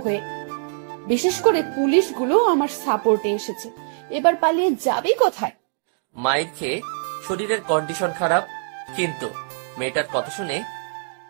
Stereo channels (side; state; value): left; silent; digital silence